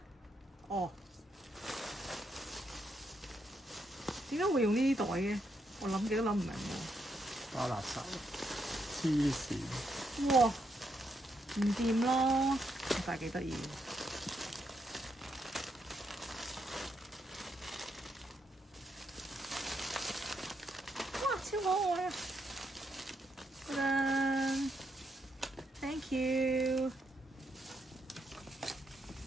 哦，點解會用呢啲袋嘅？我諗極都諗唔明喎。包垃圾，黐線！哇！唔掂咯，但係幾得意。哇！超可愛啊！噔噔 ，thank you。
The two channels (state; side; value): normal; both; correlation 0.79